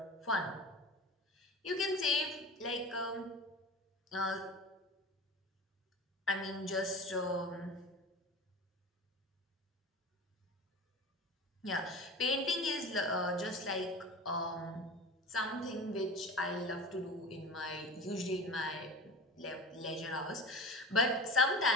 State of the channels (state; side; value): normal; both; correlation 0.33